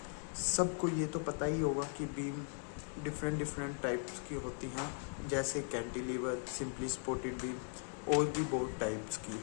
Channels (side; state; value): right; silent; 52 dB below the other